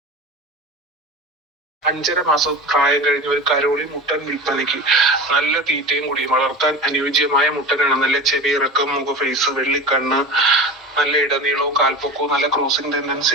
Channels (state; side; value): normal; both; correlation 0.30